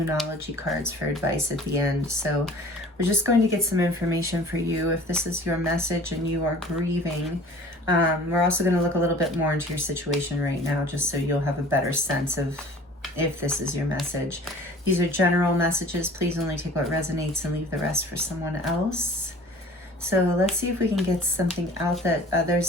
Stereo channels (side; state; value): both; normal; correlation 0.46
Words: cards for advice at the end. So we're just going to get some information for you if this is your message and you are grieving. We're also going to look a little bit more into your situation right now, just so you'll have a better sense of if this is your message. These are general messages. Please only take what resonates and leave the rest for someone else. So let's see if we can get something out that